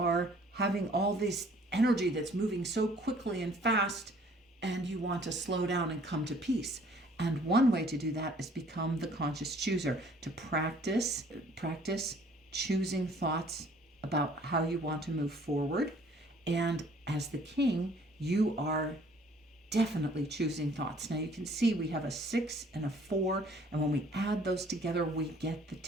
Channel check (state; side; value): normal; both; correlation 0.57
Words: having all this energy that's moving so quickly and fast, and you want to slow down and come to peace. And one way to do that is become the conscious chooser, to practice choosing thoughts about how you want to move forward. And as the king, you are definitely choosing thoughts. Now you can see we have a 6 and a 4, and when we add those together, we get the